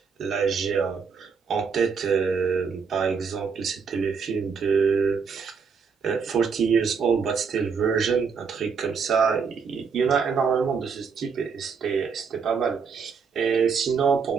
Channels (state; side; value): quieter; left; 5.8 dB